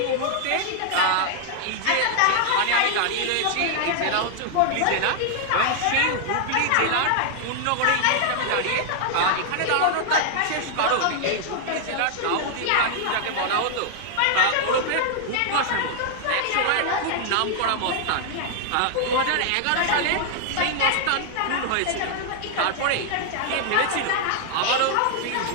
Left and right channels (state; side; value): different; both; correlation 0.00